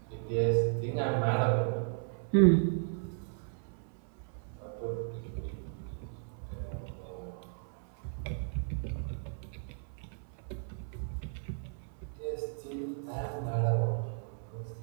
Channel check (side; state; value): left; silent; 54 dB below the other